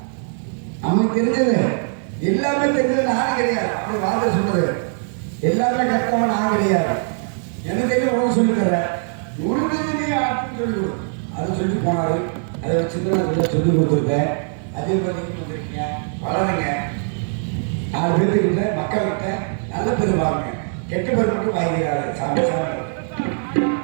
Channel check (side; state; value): left; silent; 65 dB below the other